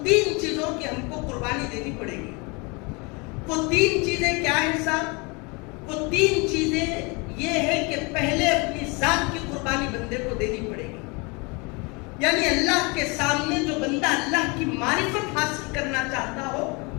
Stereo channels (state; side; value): quieter; right; 29.0 dB